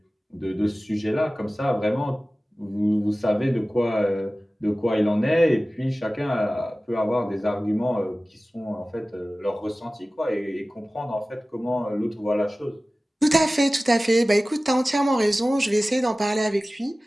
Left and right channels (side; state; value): both; normal; correlation 0.97